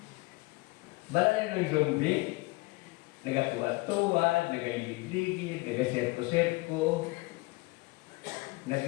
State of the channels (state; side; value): quieter; right; 24.0 dB